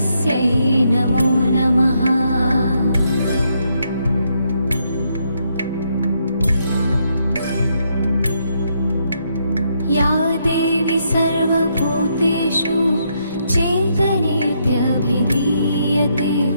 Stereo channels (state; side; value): inverted; both; correlation -0.76